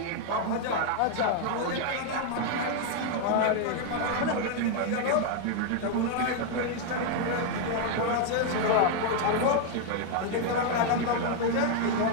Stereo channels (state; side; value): different; both; correlation 0.00